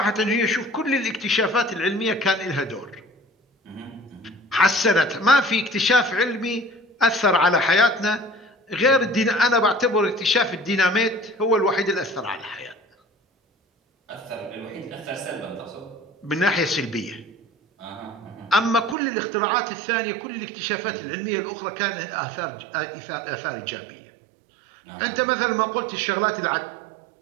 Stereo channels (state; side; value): drops out; left; at 18.9 s